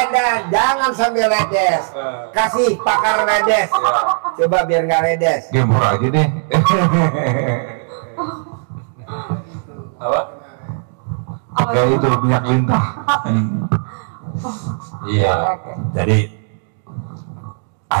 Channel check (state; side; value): silent; left; digital silence